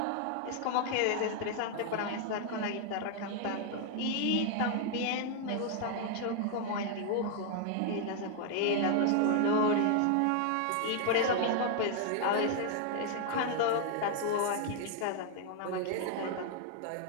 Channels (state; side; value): different; both; correlation 0.00